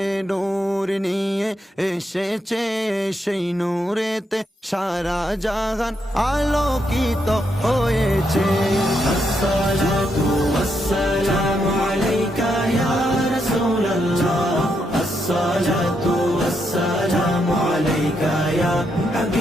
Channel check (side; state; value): both; normal; correlation 0.80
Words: নূর নিয়ে এসেছে, সেই নূরেতে সারা জাহান আলোকিত হয়েছে। আসসালাতু ওয়াসসালামু আলাইকা ইয়া রাসূলুল্লাহ, আসসালাতু ওয়াসসালামু আলাইকা ইয়া